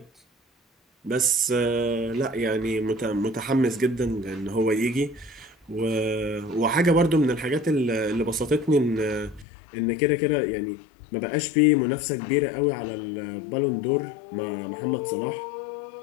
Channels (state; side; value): drops out; right; at 9.5 s